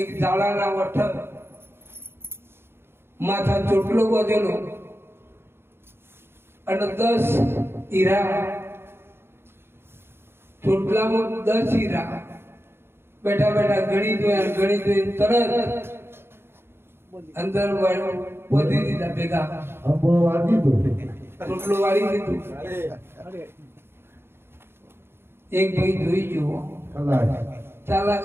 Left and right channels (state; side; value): late; left; 0.11 ms